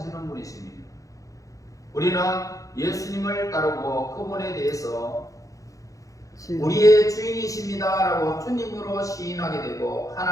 분이십니다. 우리는 예수님을 따르고 그분에 대해서 우리의 주인이십니다 라고 주님으로 시인하게 되고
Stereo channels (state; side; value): late; right; 0.16 ms